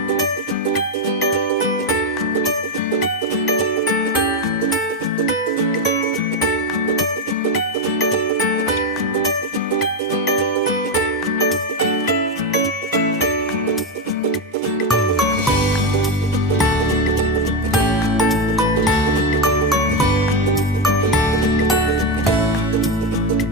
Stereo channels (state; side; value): normal; both; correlation 0.09